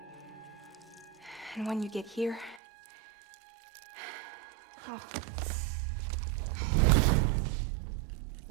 And when you get here... Oh.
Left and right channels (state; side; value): drops out; left; at 2.6 s